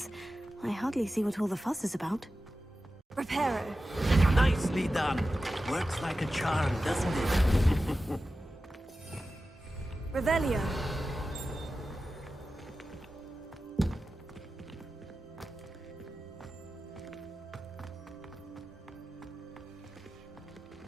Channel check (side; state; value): both; normal; correlation 0.94